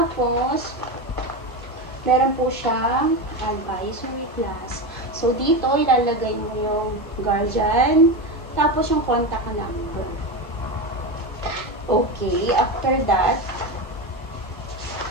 meron po siyang advisory class. So, dito, ilalagay mo yung guardian, tapos yung contact number. Okay, after that,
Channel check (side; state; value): both; normal; correlation 0.18